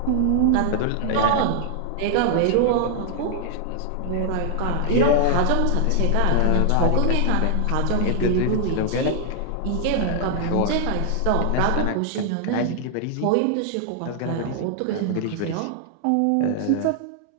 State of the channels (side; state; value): both; different; correlation 0.00